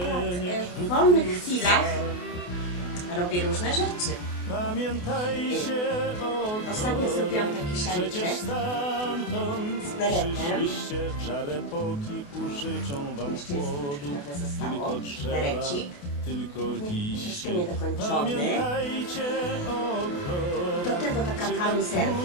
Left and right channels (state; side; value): late; right; 28 ms